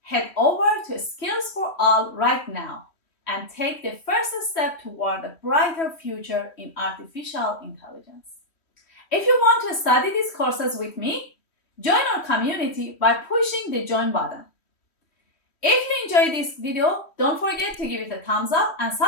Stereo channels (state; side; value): late; right; 3.1 ms